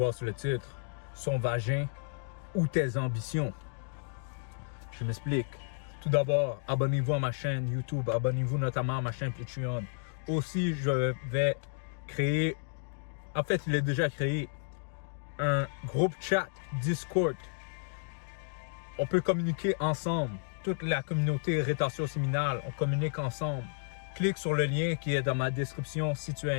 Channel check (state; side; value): silent; right; digital silence